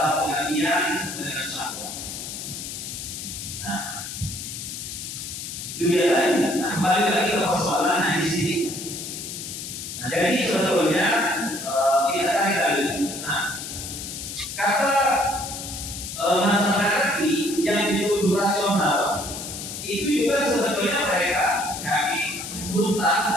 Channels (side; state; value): left; noise; hiss, 8 dB below the sound